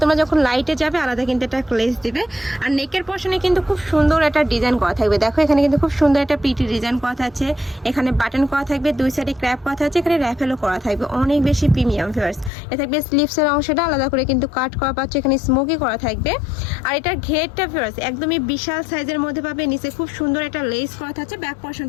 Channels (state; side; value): drops out; right; at 12.5 s